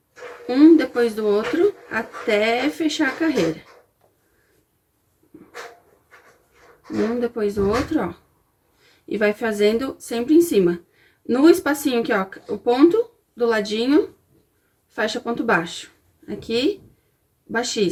Um depois do outro, até fechar a carreira. Um depois do outro, ó. E vai fazendo sempre em cima. No espacinho aqui, ó, o ponto do ladinho, fecha ponto baixo. Aqui,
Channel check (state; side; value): identical; both; correlation 1.00